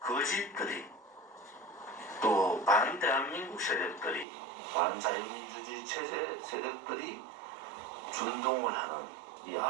또 반대한민국 세력들이, 반자유민주주의 체제 세력들이 준동을 하는 이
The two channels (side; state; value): left; drops out; at 4.2 s